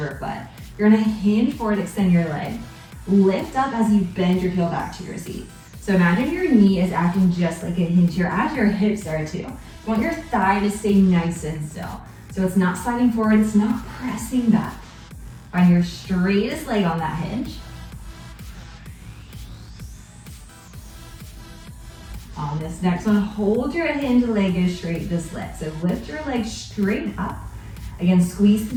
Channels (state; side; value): identical; both; correlation 1.00